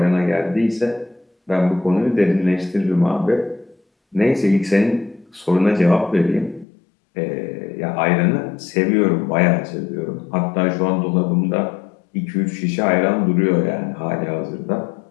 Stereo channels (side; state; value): right; drops out; at 6.7 s